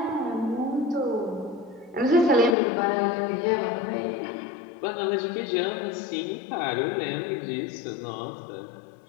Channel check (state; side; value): drops out; right; at 2.6 s